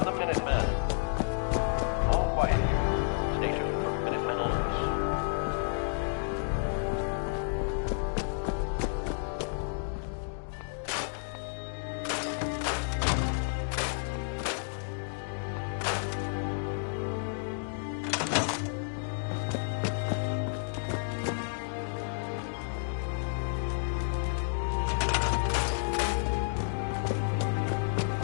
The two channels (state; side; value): silent; right; digital silence